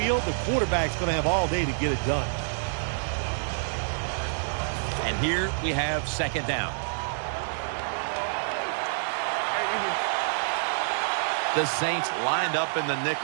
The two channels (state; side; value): silent; left; digital silence